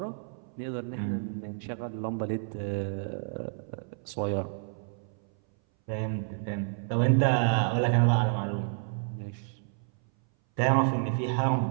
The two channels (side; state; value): left; silent; 58 dB below the other